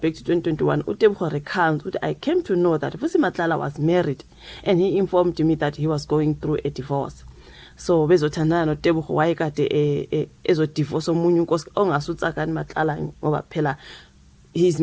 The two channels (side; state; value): both; identical; correlation 1.00